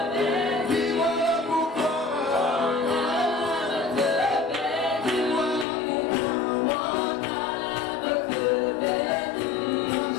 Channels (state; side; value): drops out; right; at 5.7 s